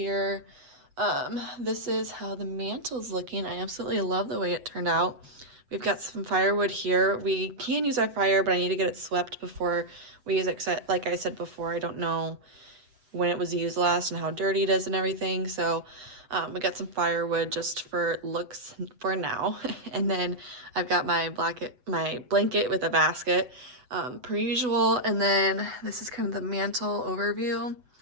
This is how the mantle's looking. I absolutely love the way it turned out. We've got some firewood here. We can use our fire, but I need to get it swept before we use it. Like I said before, I don't know when it was used last and how dirty it is and everything. So we got some firewood just for looks for now. And then I've got my blanket with a basket, per usual. And then this is kind of the mantle overview.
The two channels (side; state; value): left; late; 8.0 ms